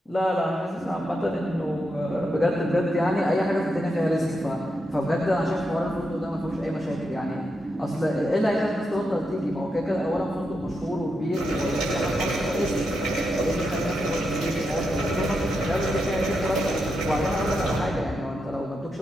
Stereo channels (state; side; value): normal; both; correlation 0.85